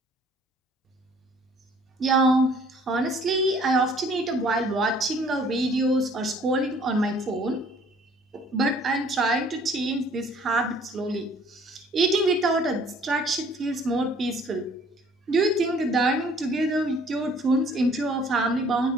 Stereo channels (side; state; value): both; normal; correlation 0.57